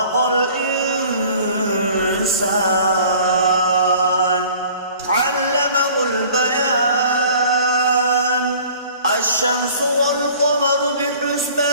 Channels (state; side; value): inverted; both; correlation -0.49